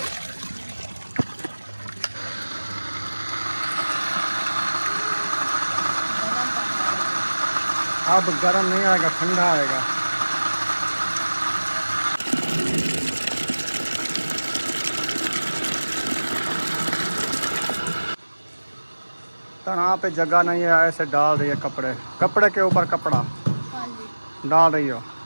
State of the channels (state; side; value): inverted; both; correlation -1.00